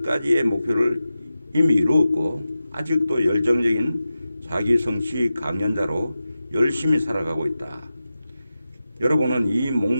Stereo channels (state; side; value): inverted; both; correlation -0.92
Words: 목표를 이미 이루었고 아직도 열정적인 자기 성취 강연자로 열심히 살아가고 있다. 여러분은 이